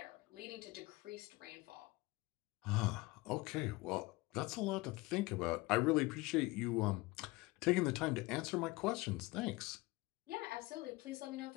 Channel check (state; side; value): quieter; right; 22.0 dB